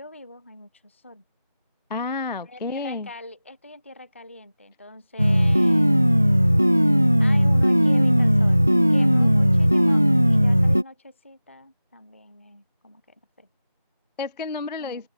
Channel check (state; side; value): inverted; both; correlation -0.98